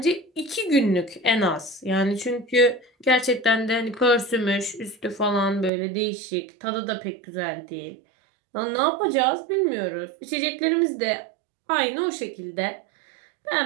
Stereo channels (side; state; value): left; drops out; at 5.7 s